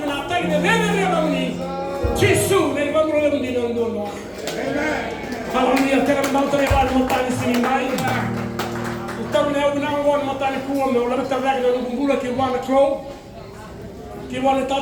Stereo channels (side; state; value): both; identical; correlation 1.00